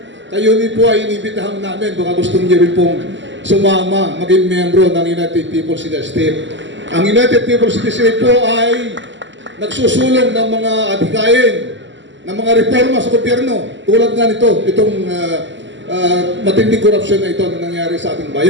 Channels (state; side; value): late; left; 0.54 ms